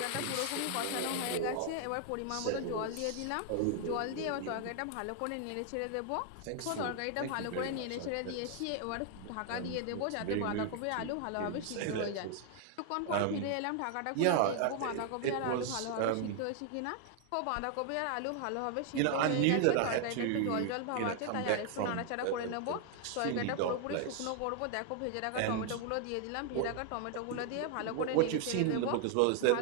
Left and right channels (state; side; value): different; both; correlation 0.00